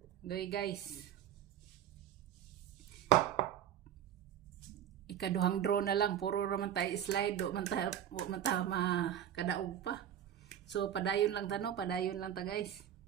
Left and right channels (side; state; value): left; quieter; 10.1 dB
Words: Guys, ikaduhang draw na lang, puro raman tayo slide, do man tayo makadaog pa. So padayon lang ta guys.